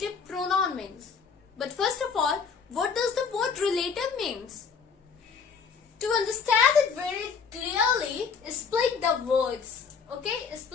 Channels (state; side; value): quieter; right; 5.9 dB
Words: pronoun means? But first of all, what does the word relative means? To understand it very clearly, split the words. Okay,